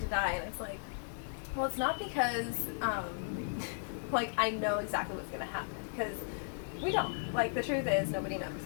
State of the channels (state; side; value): silent; right; 54 dB below the other